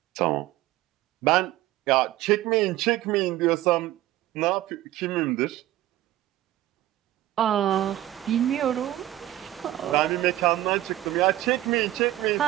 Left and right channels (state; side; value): quieter; left; 14.8 dB